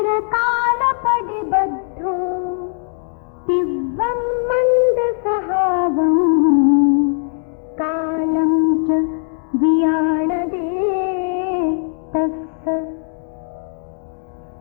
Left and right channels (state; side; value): silent; right; digital silence